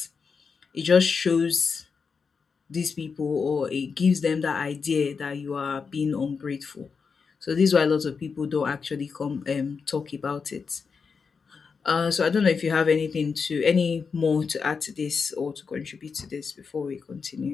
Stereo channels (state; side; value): quieter; right; 5.4 dB